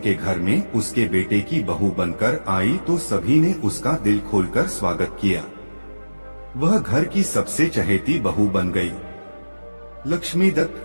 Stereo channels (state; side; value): inverted; both; correlation -1.00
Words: घर में उसके बेटे की बहू बनकर आई तो सभी ने उसका दिल खोलकर स्वागत किया। वह घर की सबसे चहेती बहू बन गई। लक्ष्मीदत्त